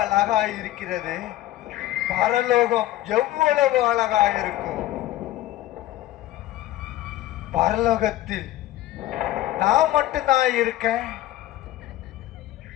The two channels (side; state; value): right; quieter; 14.7 dB